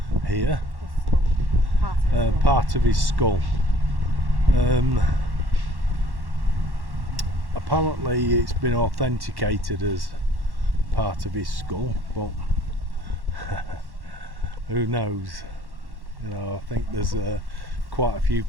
here, part of his skull. Apparently it's been authenticated as part of his skull, but who knows? You know, I think there's quite a few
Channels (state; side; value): late; left; 1.1 ms